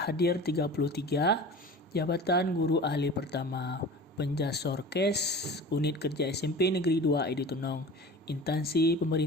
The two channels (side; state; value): both; normal; correlation 0.37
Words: hadir 33, jabatan guru ahli pertama, Penjasorkes, Unit Kerja SMP Negeri 2 Edi Tunong, Instansi